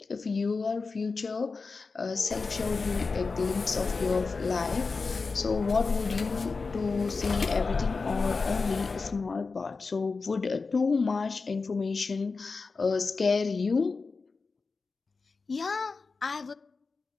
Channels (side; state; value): right; quieter; 4.3 dB